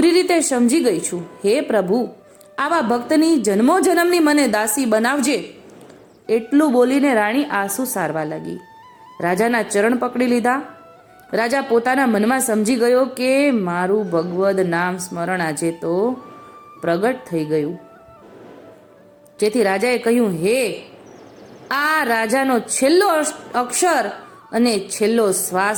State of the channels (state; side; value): identical; both; correlation 1.00